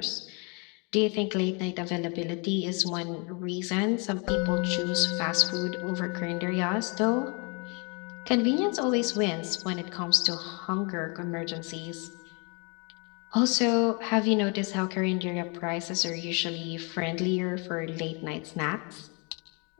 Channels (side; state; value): right; quieter; 33.0 dB